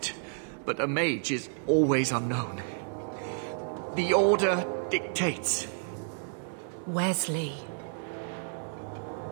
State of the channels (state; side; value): silent; left; 57 dB below the other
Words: but a mage is always unknown. The Order dictates. Wesley.